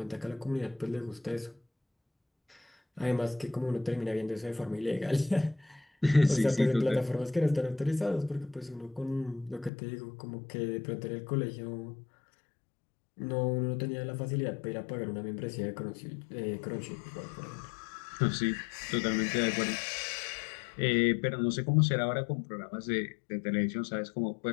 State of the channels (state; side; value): drops out; right; at 9.7 s